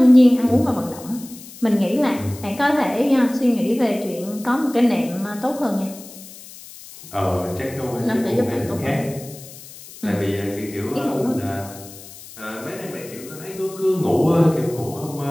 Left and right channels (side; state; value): left; noise; hiss, 17 dB below the sound